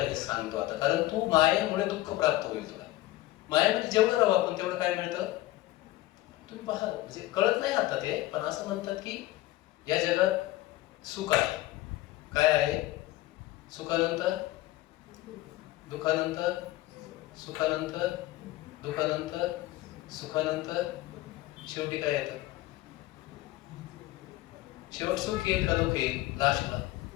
हे सांगतो आता, कारण तू मायेमुळे दुःख प्राप्त होईल तुला. मायेमध्ये जेवढं राहू आपण तेवढं काय मिळतं तुम्ही पहा. म्हणजे कळत नाही आता ते, पण असं म्हणतात की या जगात सुख आहे. काय आहे? सुखानंतर दुःखानंतर, सुखानंतर दुःखानंतर, सुखानंतर शेवटी काय येतं? शेवट सुख येईल का दुःख येईल? लास्टला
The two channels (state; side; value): quieter; right; 17.0 dB